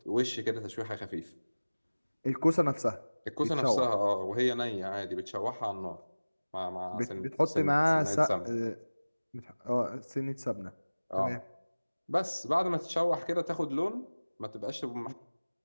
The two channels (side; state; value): both; inverted; correlation -1.00